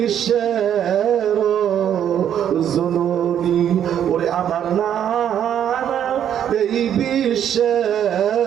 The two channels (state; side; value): quieter; left; 9.6 dB